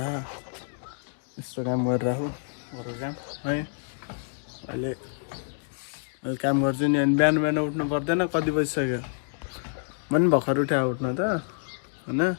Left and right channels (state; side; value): silent; right; digital silence